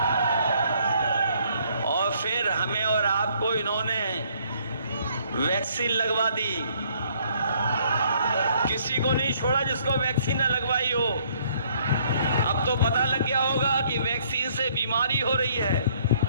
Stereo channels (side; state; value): both; inverted; correlation -0.64